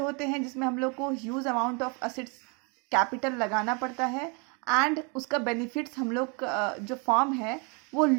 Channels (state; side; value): quieter; left; 33.4 dB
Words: हैं जिसमें हम लोग को huge amount of assets capital लगाना पड़ता है एंड उसका बेनिफिट्स हम लोग जो फॉर्म है वो